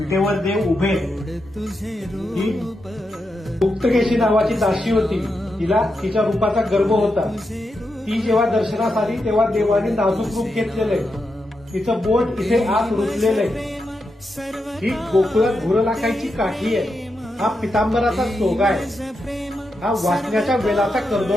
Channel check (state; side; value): normal; both; correlation 0.86